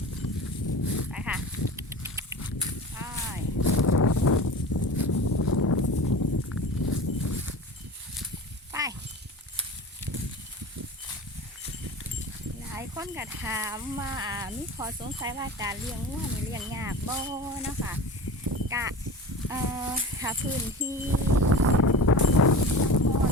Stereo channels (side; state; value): both; normal; correlation 0.34